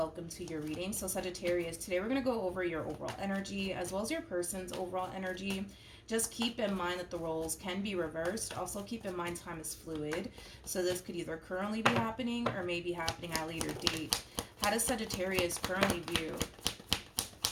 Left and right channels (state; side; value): identical; both; correlation 1.00